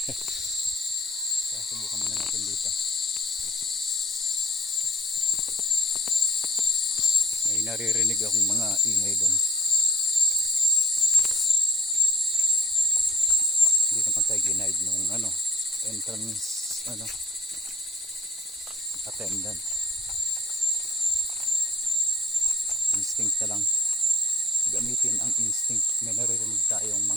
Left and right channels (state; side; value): normal; both; correlation 0.61